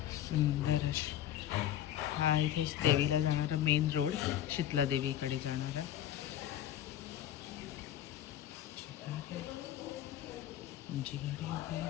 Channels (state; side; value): quieter; right; 11.5 dB